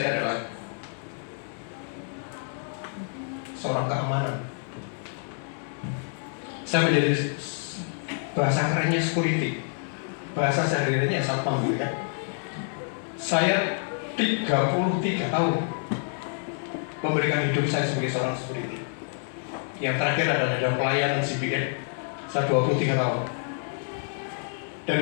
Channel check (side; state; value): right; silent; 60 dB below the other